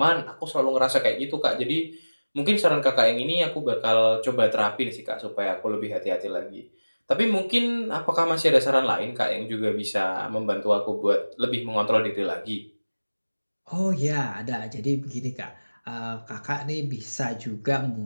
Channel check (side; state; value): both; inverted; correlation -1.00